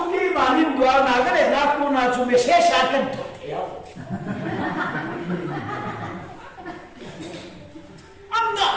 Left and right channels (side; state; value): both; identical; correlation 1.00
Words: manin dua nagare naku na chume shesha kan thothya anga